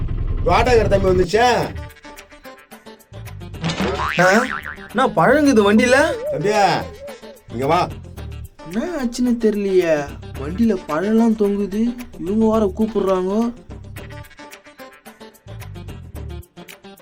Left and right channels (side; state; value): both; identical; correlation 1.00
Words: வாடகை தம்பி வந்துச்சா? நான் பழங்குது வண்டியில. தம்பியா இங்க வா. என்ன ஆச்சுன்னு தெரியலையே, வண்டியில பழம்லாம் தொங்குது, இவங்க வர கூப்பிடுறாங்க.